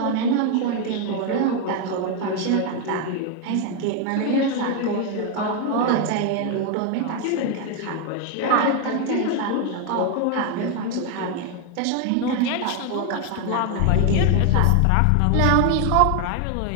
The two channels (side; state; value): both; different; correlation 0.01